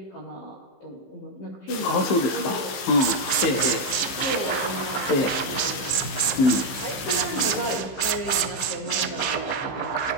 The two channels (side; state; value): right; late; 15 ms